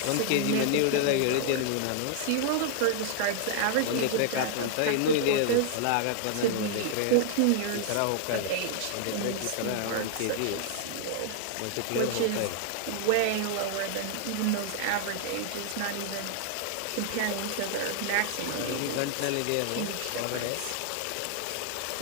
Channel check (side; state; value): both; different; correlation 0.00